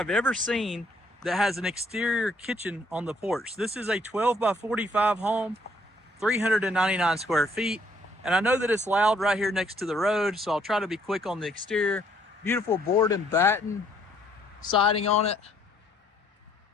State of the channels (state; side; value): normal; both; correlation 0.66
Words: ever seen that has an exterior kitchen on the porch. This is a 12 by 45 home, 399 square feet. And I know that it's loud right here next to the road, so I'll try to be quick on the exterior. Beautiful board and batten siding on it